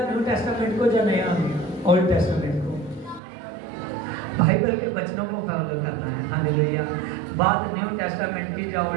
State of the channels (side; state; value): left; drops out; at 3.2 s